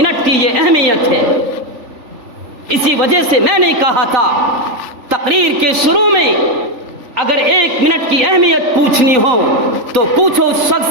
کی یہ اہمیت ہے۔ اسی وجہ سے میں نے کہا تھا تقریر کے شروع میں، اگر ایک منٹ کی اہمیت پوچھنی ہو تو پوچھو اس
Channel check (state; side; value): late; left; 3.4 ms